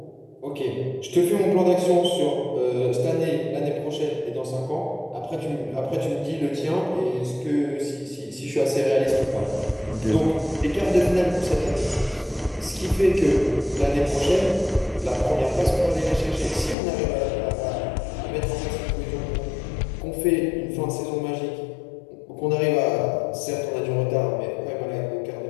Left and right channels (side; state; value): right; drops out; at 16.8 s